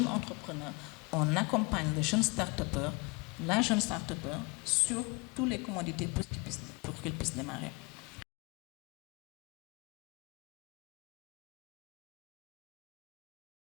entrepreneur, on accompagne le jeune start-upper, la jeune start-upper sur toutes les commodités pour qu'il puisse démarrer.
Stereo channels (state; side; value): quieter; right; 28.2 dB